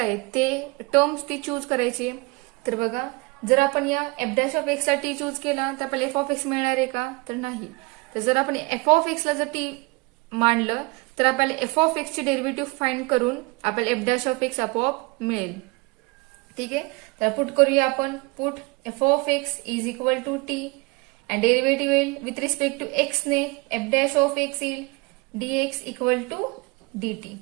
ते टर्म्स ती चूज करायची. तर बघा जर आपण या एफ डॅश ऑफ एक्स ला टी चूज केला तर आपल्याला एफ ऑफ एक्स मिळणार आहे का तर नाही. तर जर आपण एफ ऑफ एक्स ला जर टी मांडलं तर आपल्याला एफ ऑफ एक्स ची डेरिव्हेटिव्ह फाइंड करून आपल्याला एफ डॅश ऑफ एक्स आपोआप मिळेल. ठीक आहे. तर पुट करूया आपण. Put f of x is equal to t and derivative येईल with respect to x ने f dash of x येईल dx equal to dt.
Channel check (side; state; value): left; quieter; 26.5 dB